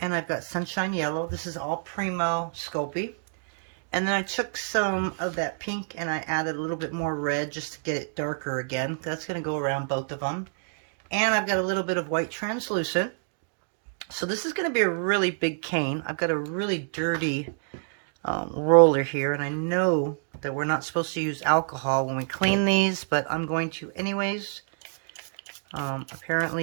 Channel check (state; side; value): silent; left; digital silence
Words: I've got sunshine yellow. This is all Premo Sculpey. And then I took some of that pink and I added a little bit more red just to get it darker again. That's going to go around both of them. And I've got a little bit of white translucent. So this is going to be a really big cane. I've got a really dirty roller here. And I know that we're not supposed to use alcohol when we clean these, but I'm going to anyways.